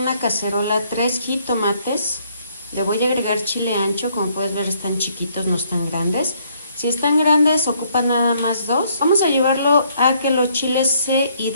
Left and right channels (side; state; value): both; inverted; correlation -0.68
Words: cacerola 3 jitomates, le voy a agregar chile ancho, como puedes ver están chiquitos, no están grandes. Si están grandes ocupan nada más 2. Vamos a llevarlo a que los chiles se